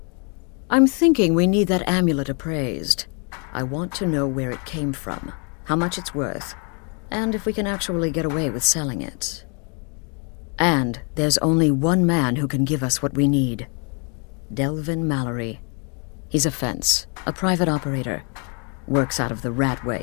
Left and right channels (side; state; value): right; quieter; 36.4 dB